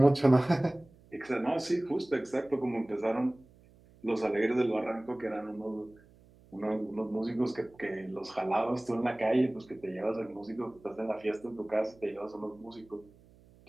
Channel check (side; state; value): right; noise; hum, 27 dB below the sound